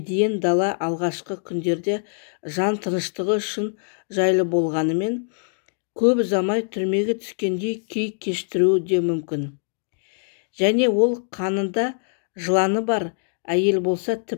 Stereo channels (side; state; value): right; silent; digital silence